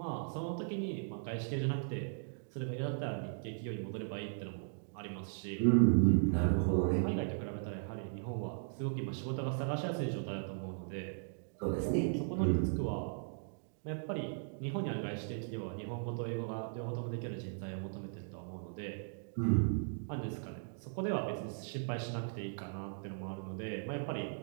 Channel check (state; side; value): silent; left; digital silence